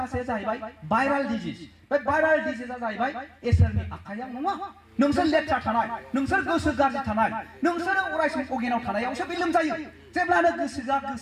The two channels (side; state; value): both; identical; correlation 1.00